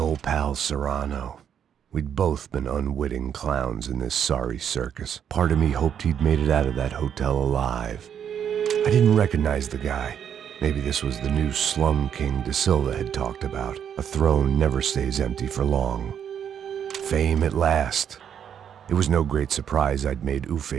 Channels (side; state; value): left; quieter; 8.6 dB